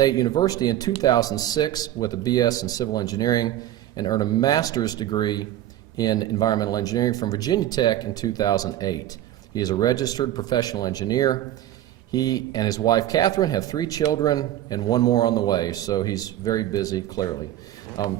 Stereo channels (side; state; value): left; quieter; 13.0 dB